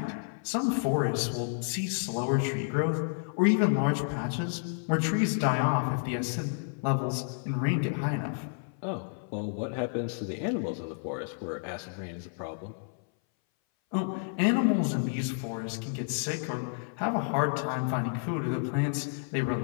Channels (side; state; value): right; silent; 58 dB below the other